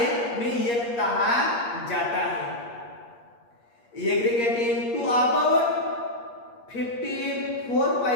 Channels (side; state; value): right; late; 8.5 ms